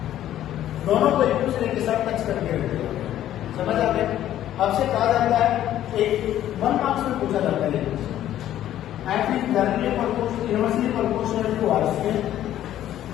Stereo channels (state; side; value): quieter; right; 12.2 dB